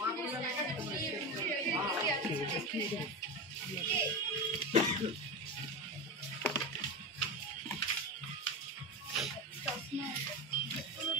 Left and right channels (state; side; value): normal; both; correlation 0.20